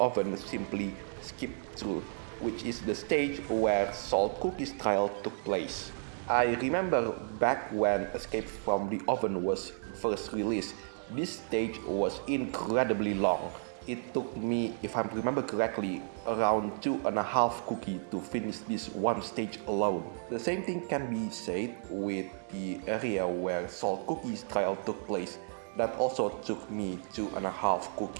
simply skipped through, which is the stage where Salt Cookie's trial took place. I remember back when Escape from the Oven was first released, this stage was incredibly long. It took me, if I remember correctly, around 2.5 cookies to finish this one stage alone. The same thing can be said with the area where Salt Cookie's trial took place. That also took me 2.5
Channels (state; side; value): silent; left; digital silence